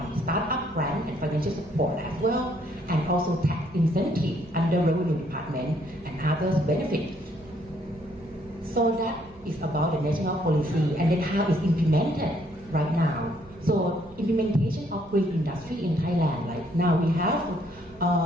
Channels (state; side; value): noise; right; hum, 24 dB below the sound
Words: startup grant, and financial support as well, and also tax incentive under revenue department and others benefits. So that is about the national policy and then how it's implemented right now. So implementation of green industry in Thailand, like now we have